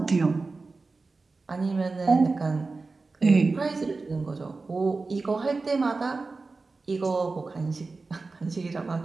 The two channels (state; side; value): quieter; left; 3.8 dB